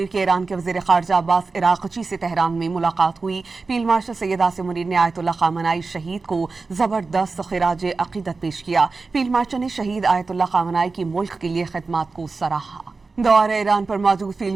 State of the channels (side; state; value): left; quieter; 4.1 dB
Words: کے ایران کے وزیر خارجہ عباس عراقچی سے تہران میں ملاقات ہوئی۔ فیلڈ مارشل سید عاصم منیر نے آیت اللہ خامنہئی شہید کو زبردست خراج عقیدت پیش کیا۔ فیلڈ مارشل نے شہید آیت اللہ خامنہئی کی ملک کے لیے خدمات کو سراہا۔ دورہ ایران پر موجود فیلڈ